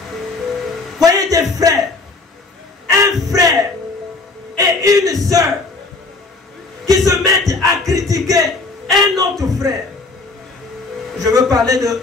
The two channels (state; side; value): quieter; right; 3.6 dB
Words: Voyez des frères, un frère et une sœur qui se mettent à critiquer un autre frère. Je veux parler de